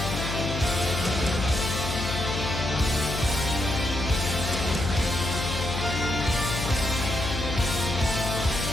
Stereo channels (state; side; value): noise; left; hum, 4 dB below the sound